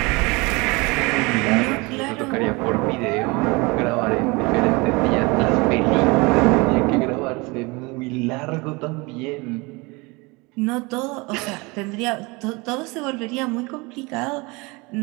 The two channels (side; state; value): left; quieter; 26.0 dB